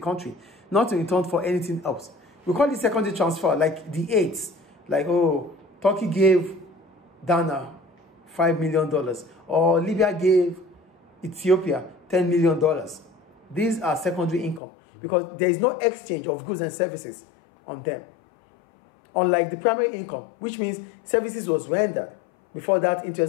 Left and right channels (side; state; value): right; drops out; at 14.6 s